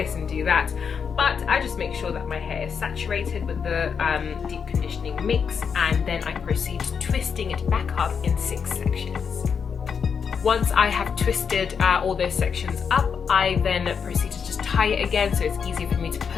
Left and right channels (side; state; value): right; quieter; 6.5 dB